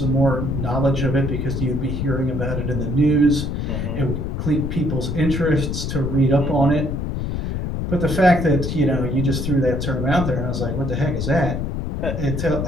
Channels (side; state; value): left; noise; rumble, 2 dB below the sound